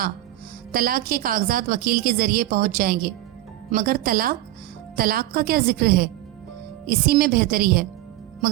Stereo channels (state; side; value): quieter; left; 15.5 dB